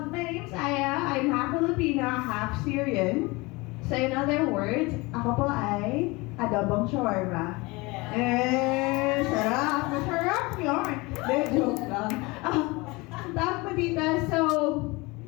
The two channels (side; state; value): right; quieter; 24.2 dB